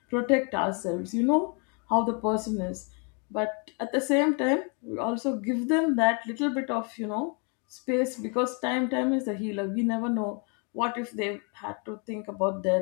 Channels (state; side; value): quieter; right; 36.8 dB